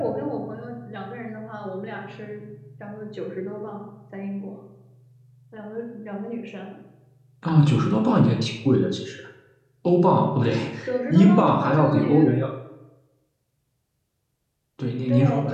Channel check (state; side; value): identical; both; correlation 1.00